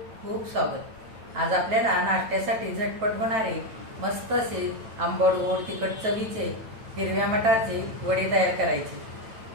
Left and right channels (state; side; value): late; left; 9.1 ms